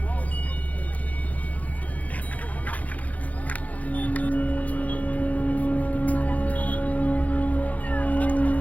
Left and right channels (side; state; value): right; late; 0.073 ms